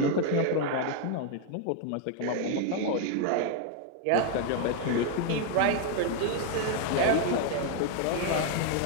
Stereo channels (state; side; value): different; both; correlation 0.00